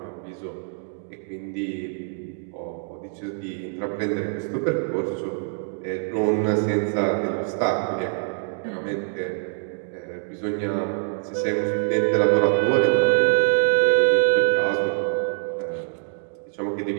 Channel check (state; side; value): silent; left; digital silence